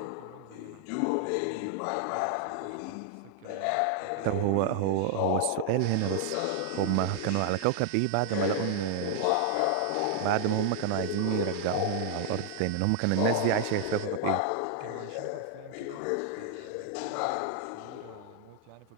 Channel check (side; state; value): both; different; correlation -0.01